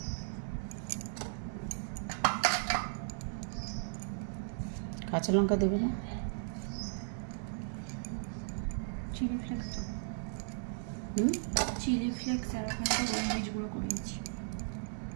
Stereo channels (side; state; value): left; silent; digital silence